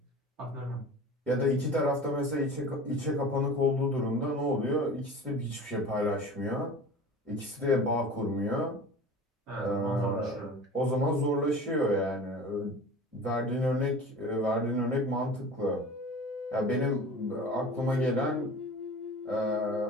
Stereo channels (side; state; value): both; normal; correlation 0.38